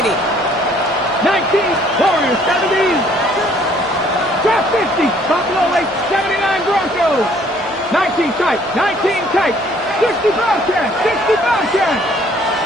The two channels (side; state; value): both; normal; correlation 0.60